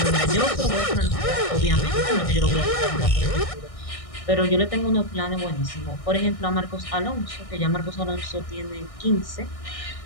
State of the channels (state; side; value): late; right; 1.6 ms